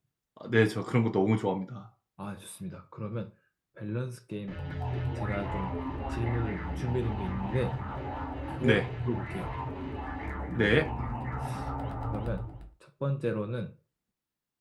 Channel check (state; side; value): identical; both; correlation 1.00